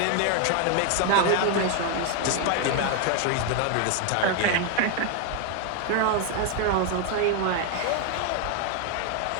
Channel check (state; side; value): different; both; correlation 0.01